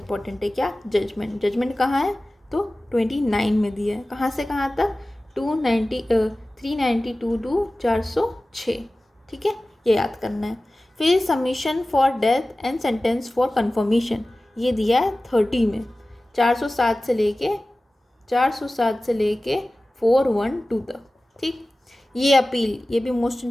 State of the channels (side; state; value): both; normal; correlation 0.97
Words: है क्या? जजमेंट। जजमेंट कहाँ है? तो 29 में दिया है। कहाँ से कहाँ तक? 392 to 406। ठीक है, ये याद करना है। फिर submission for death and sentence for confirmation ये दिया है 30 में, 407 से लेके 412 तक। ठीक, ये अपील ये भी मोस्ट